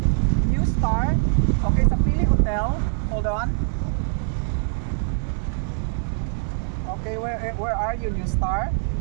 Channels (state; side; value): silent; left; 63 dB below the other